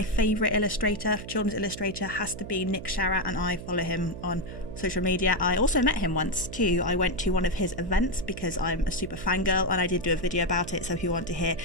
favourite illustrator, children's illustrator, has to be Nick Sharratt, and I follow him on social media. I also met him once too. I went to one of his events because I'm a super fangirl, and I did do a video about it, so if you want to hear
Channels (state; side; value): noise; right; hum, 11 dB below the sound